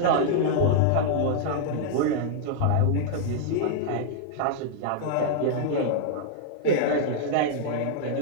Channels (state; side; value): different; both; correlation -0.01